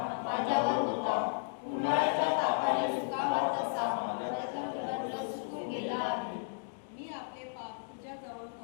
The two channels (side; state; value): right; silent; digital silence